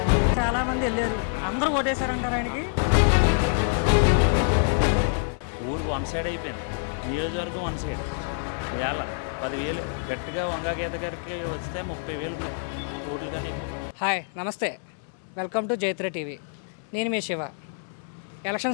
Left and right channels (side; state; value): right; silent; digital silence